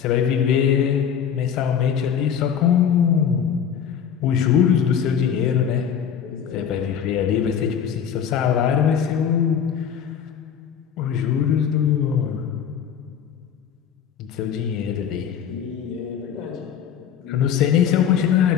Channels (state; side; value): quieter; right; 8.2 dB